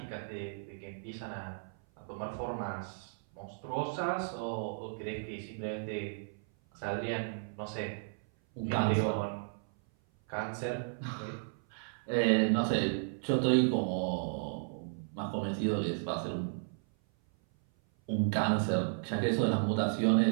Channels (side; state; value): left; silent; 55 dB below the other